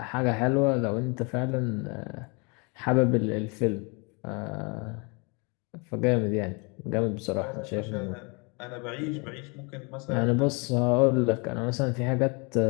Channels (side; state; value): right; quieter; 31.5 dB